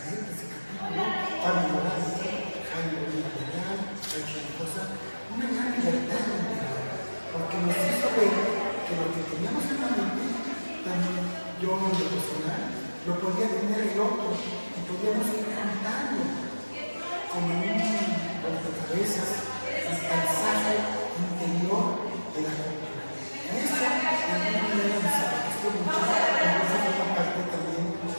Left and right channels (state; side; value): inverted; both; correlation -1.00